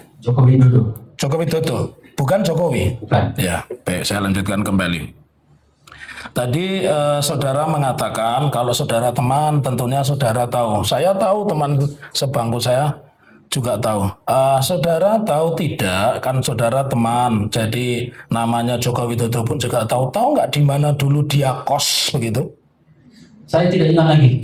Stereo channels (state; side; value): identical; both; correlation 1.00